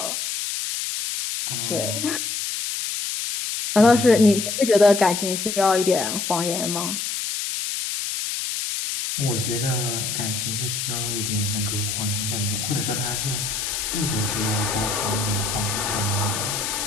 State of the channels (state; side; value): noise; left; hiss, 3 dB below the sound